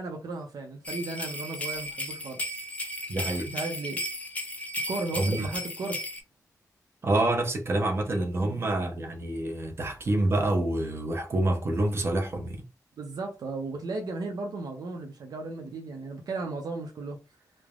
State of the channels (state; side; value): normal; both; correlation 0.74